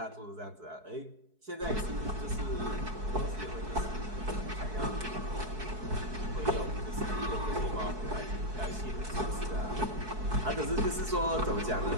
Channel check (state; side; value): late; left; 4.6 ms